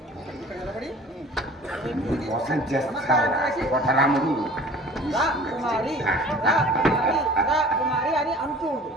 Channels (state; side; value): normal; both; correlation 0.45